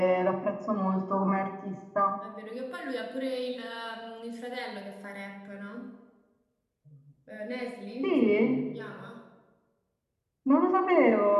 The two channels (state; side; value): identical; both; correlation 1.00